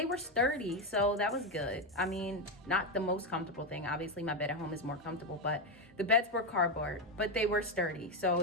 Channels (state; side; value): normal; both; correlation 0.08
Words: were sturdy, so that was good. I mean, not the most comfortable thing. Obviously, my bed at home is more comfortable, but the beds were cardboard, but they were sturdy. So